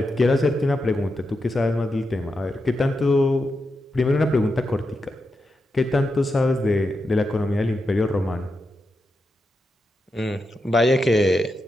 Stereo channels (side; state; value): both; normal; correlation 0.87